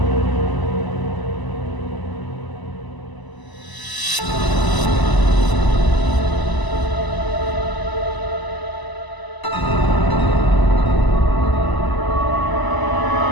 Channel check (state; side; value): late; right; 1.0 ms